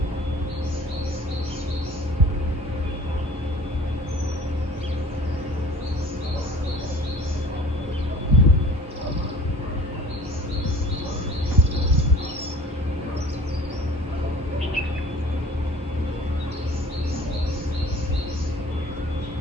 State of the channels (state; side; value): normal; both; correlation 0.46